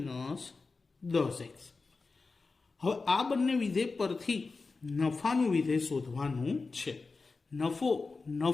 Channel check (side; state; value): right; quieter; 4.1 dB